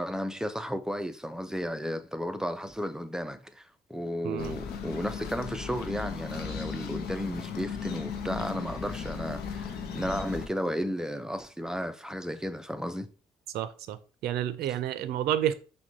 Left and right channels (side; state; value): both; normal; correlation 0.71